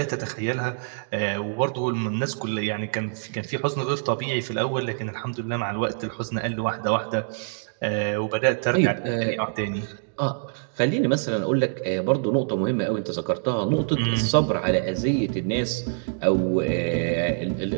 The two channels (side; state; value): left; silent; digital silence